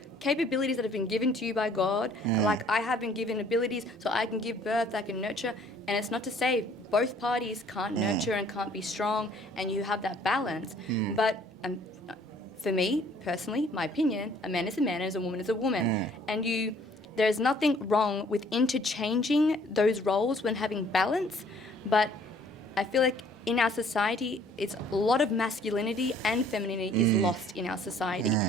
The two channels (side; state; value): both; normal; correlation 0.58